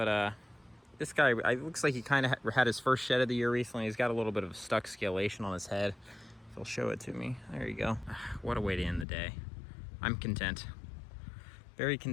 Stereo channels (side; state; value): right; drops out; at 9.1 s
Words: this guy, it looks like he kind of had his first shed of the year recently. He's got a little bit of stuck scalation on his head. If he'll show it to me. There you go. What a way to end the day. I'm content. Very